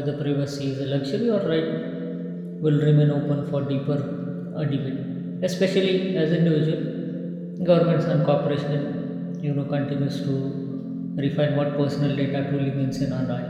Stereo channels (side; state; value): both; identical; correlation 1.00